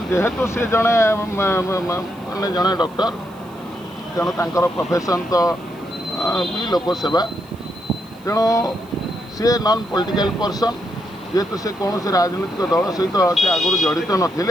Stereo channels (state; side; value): noise; right; hiss, 28 dB below the sound